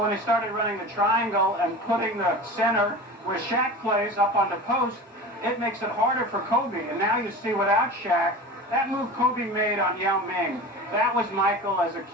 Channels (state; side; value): normal; both; correlation 0.33